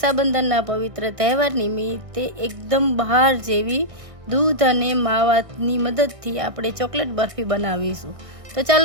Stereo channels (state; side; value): late; left; 1.6 ms